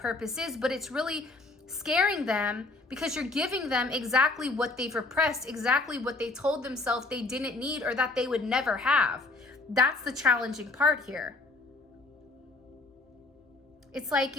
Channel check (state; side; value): quieter; right; 3.3 dB